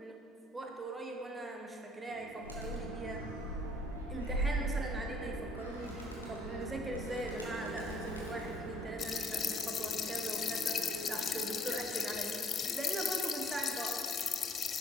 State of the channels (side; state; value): both; normal; correlation 0.59